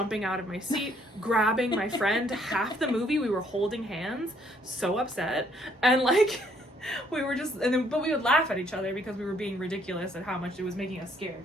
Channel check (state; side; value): normal; both; correlation 0.66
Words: out of my seat, grabbing my friend. Half the movie we were holding hands, so upset, and like we were just but we would laugh at each other because we were being ridiculous at how much it was making us scared.